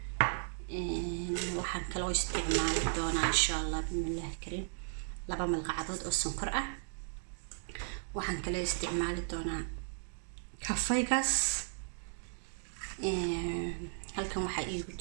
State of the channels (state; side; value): silent; left; digital silence